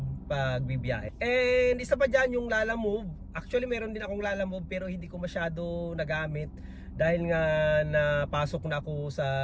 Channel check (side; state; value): both; identical; correlation 1.00